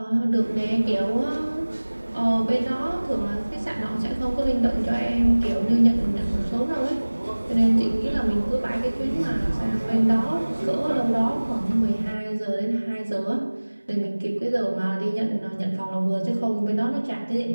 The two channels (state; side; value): inverted; both; correlation -1.00